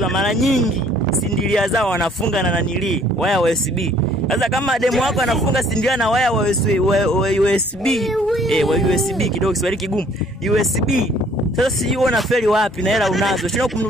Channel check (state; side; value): normal; both; correlation 0.59